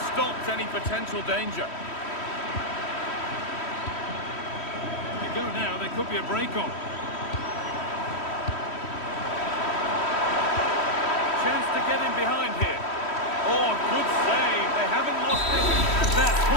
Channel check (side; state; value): right; late; 3.1 ms